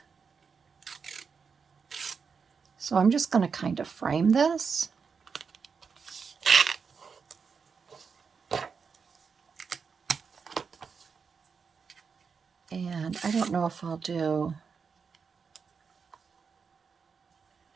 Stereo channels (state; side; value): quieter; left; 5.7 dB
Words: So I'm just going to kind of frame this. And I don't know if I'll do,